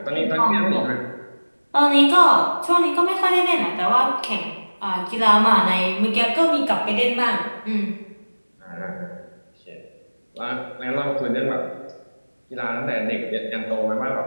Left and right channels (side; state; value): both; inverted; correlation -1.00